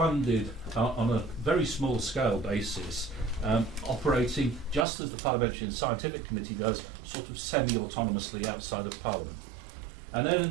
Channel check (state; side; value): drops out; left; at 4.9 s